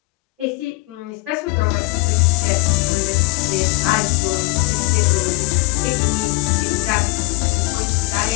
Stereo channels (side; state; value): right; quieter; 23.2 dB